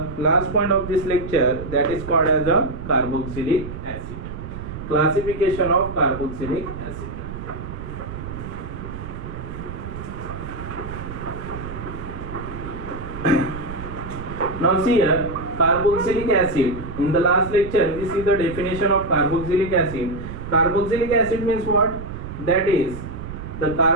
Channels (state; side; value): noise; right; rumble, 9 dB below the sound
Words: last point of this lecture, that is called as a carboxylic acid. Classification of carboxylic acid. Now see here, carboxylic acid. In the last lecture we see the definition of carboxylic acid. Carboxylic acid means what? That is the